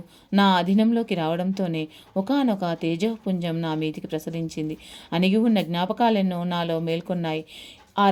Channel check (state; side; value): identical; both; correlation 1.00